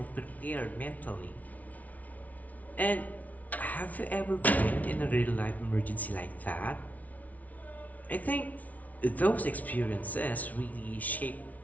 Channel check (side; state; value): right; late; 0.072 ms